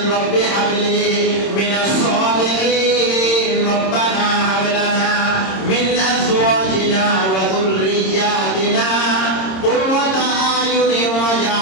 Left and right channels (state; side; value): late; right; 26 ms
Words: রব্বি হাবলি মিনাস সালিহিন, রব্বানা হাব লানা মিন আজওয়াজিনা ওয়া যুররিয়াতিনা কুররাতা আয়ুনিন